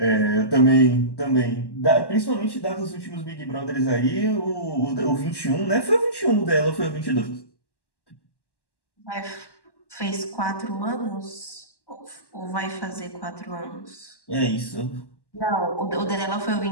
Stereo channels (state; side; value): late; right; 1.1 ms